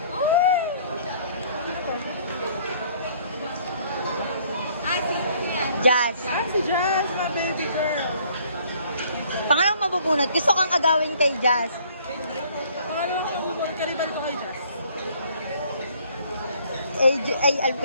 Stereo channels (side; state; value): both; inverted; correlation -0.59